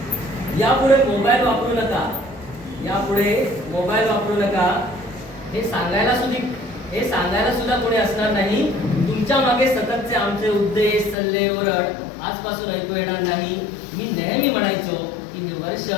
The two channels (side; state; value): right; drops out; at 11.2 s